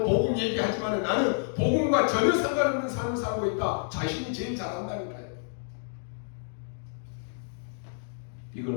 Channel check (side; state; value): right; silent; digital silence